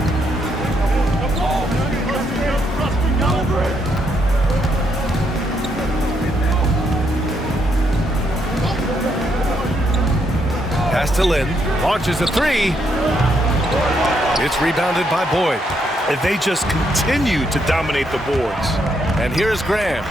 Pass to Lynn. Launches a 3. It's rebounded by Boyd. And they just continue to dominate the boards. And here's Graham.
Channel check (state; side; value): normal; both; correlation 0.76